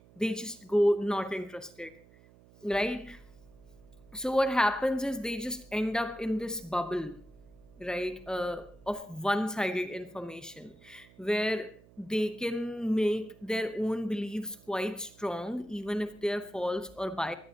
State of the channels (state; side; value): noise; right; hum, 25 dB below the sound